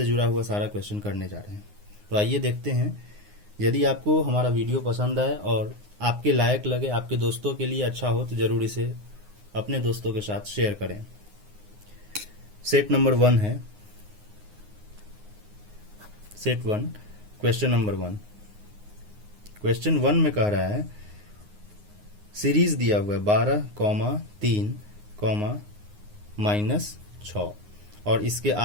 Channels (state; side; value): late; left; 9.6 ms